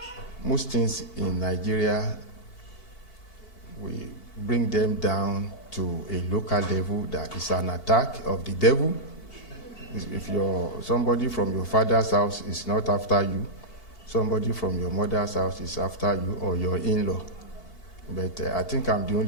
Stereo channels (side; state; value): right; late; 2.8 ms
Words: most things in Nigeria, we bring them down to a local level that is an attack of the devil. If somebody from your father's house is not after you, somebody from your mother's house is after you, or your in-law. But I think I'm the